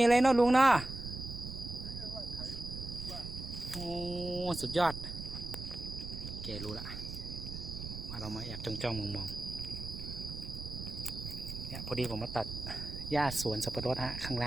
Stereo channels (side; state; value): right; noise; rumble, 8 dB below the sound